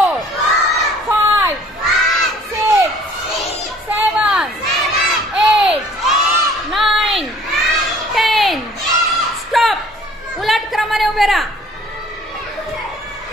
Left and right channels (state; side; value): normal; both; correlation 0.54